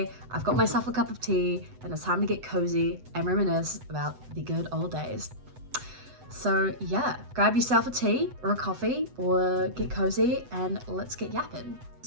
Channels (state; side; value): late; left; 7.9 ms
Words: I've got myself a cup of tea and it's time to get cozy and reminisce about the good old days. So yeah, grab yourself a tea or a coffee or get cozy and let's get yapping.